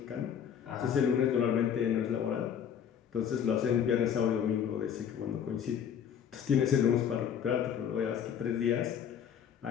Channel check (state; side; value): quieter; right; 8.4 dB